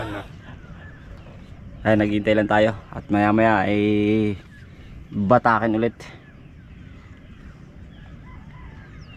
Ay, naghihintay lang tayo at maya maya ay batakin ulit.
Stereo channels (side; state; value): both; identical; correlation 1.00